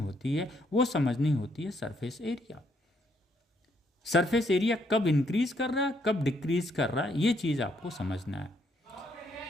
है वो समझनी होती है सरफेस एरिया। सरफेस एरिया कब इंक्रीज कर रहा है कब डिक्रीज कर रहा है ये चीज़ आपको समझना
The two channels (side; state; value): both; normal; correlation 0.72